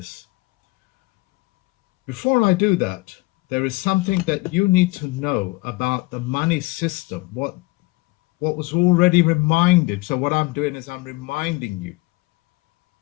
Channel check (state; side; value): quieter; right; 22.9 dB